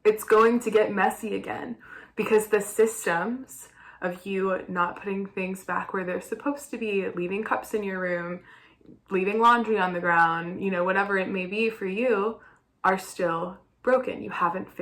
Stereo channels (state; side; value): identical; both; correlation 1.00